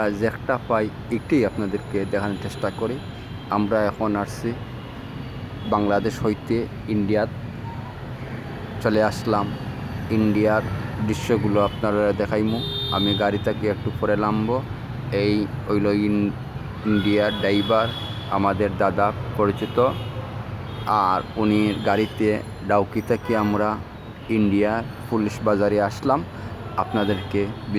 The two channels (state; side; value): identical; both; correlation 1.00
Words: যেটা পাই একটি আপনাদেরকে দেখানোর চেষ্টা করি। আমরা এখন আসছি বাংলাদেশ হইতে ইন্ডিয়াত চলে আসলাম। ইন্ডিয়ার দৃশ্যগুলো আপনারা দেখাইমু। আমি গাড়ি থেকে একটু পরে নামবো। এই হইল ইন্ডিয়ার ড্রাইভার, আমাদের দাদা পরিচিত। আর উনি গাড়িতে ডাউকি থেকে আমরা ইন্ডিয়ার পুলিশ বাজারে আসলাম। আপনাদেরকে